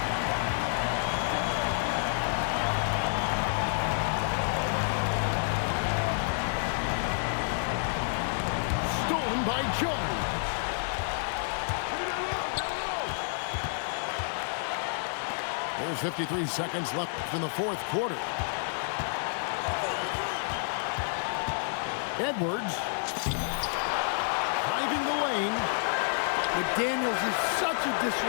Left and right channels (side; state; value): right; silent; digital silence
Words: Stolen by Jones. There's 53 seconds left in the fourth quarter. Edwards driving the lane. McDaniels is such a